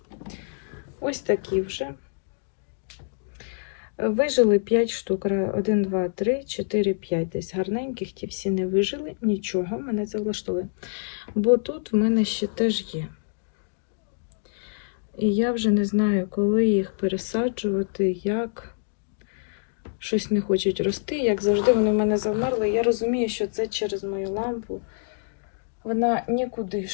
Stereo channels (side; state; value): right; silent; digital silence